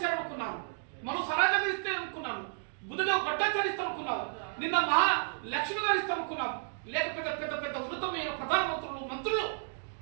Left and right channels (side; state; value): left; silent; digital silence